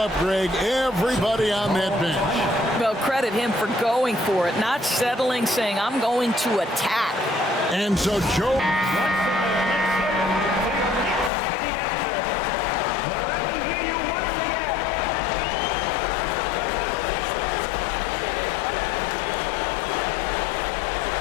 Greg, everybody on that bench. Well, credit him for going for it, not settling, saying, I'm going to attack. And so Joe...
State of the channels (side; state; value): right; drops out; at 11.3 s